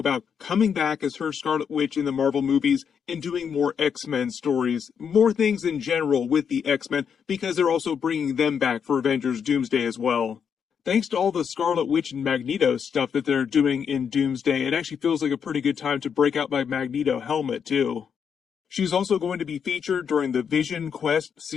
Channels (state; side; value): quieter; right; 7.1 dB